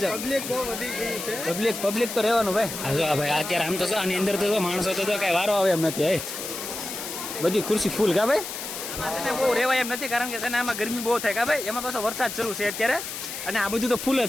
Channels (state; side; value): noise; left; hiss, 7 dB below the sound